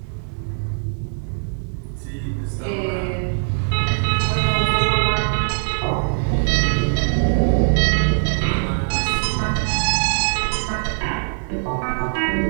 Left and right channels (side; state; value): left; silent; digital silence